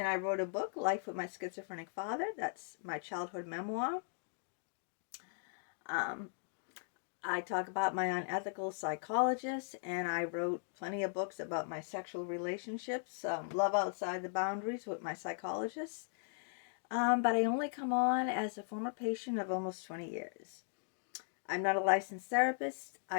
I wrote a book, Life with My Schizophrenic Father. That's my childhood memoir. I talk about my unethical psychologist, and I wrote plenty of books about my sexual relationships, Love Outside the Boundaries with my psychologist. But I only come on as a former patient of almost 20 years. I'm not a licensed therapist.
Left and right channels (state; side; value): silent; right; digital silence